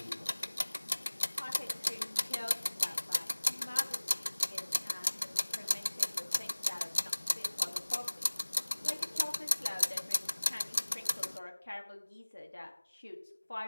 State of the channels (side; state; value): both; inverted; correlation -1.00